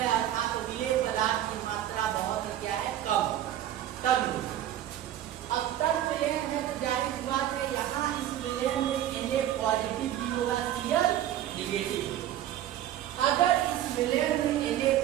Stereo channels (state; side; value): quieter; left; 12.1 dB